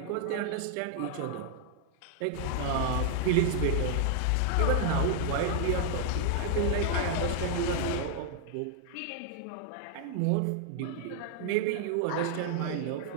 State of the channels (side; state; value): both; different; correlation 0.00